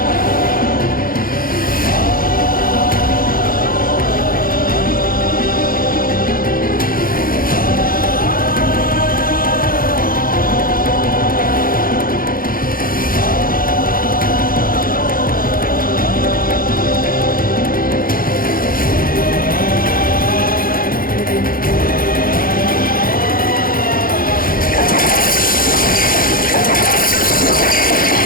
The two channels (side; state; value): right; late; 0.42 ms